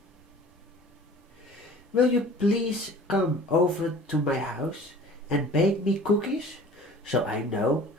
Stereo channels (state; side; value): normal; both; correlation 0.45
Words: "Will you please come over to my house and bake me cookies so I know